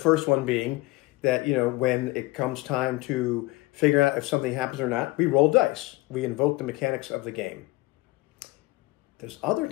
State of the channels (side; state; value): right; quieter; 20.8 dB